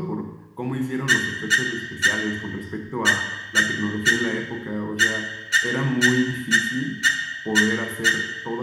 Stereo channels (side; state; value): both; identical; correlation 1.00